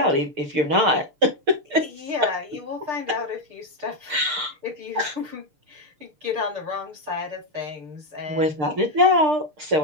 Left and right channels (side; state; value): left; late; 6.7 ms